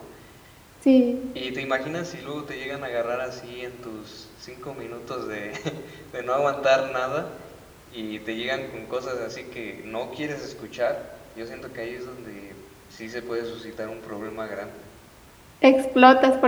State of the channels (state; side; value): identical; both; correlation 1.00